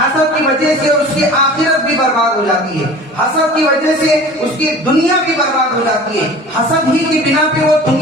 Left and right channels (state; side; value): normal; both; correlation 0.41